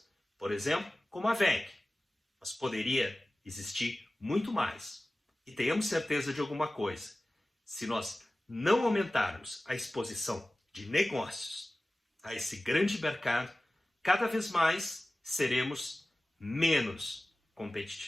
por exemplo, como a WEG, mas poderia existir muito mais. E tenhamos certeza de alguma coisa, se nós não aumentarmos a exposição de negócios a esse grande mercado, cada vez mais seremos menos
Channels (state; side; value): normal; both; correlation 0.97